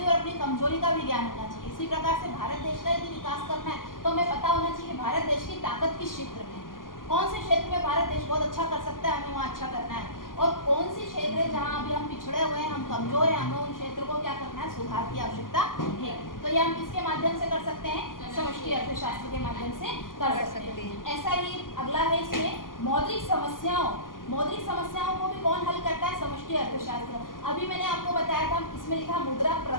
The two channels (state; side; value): late; right; 0.90 ms